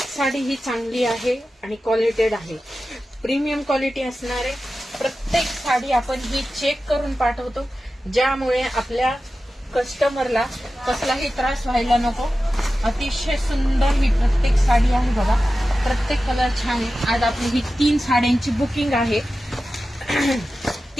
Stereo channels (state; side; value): normal; both; correlation 0.94